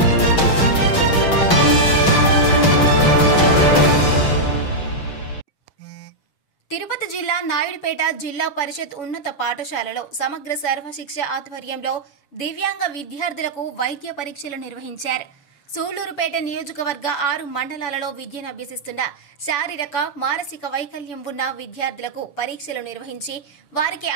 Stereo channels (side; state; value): right; late; 6.1 ms